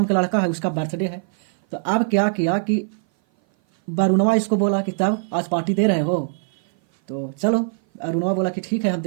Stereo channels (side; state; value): left; silent; 58 dB below the other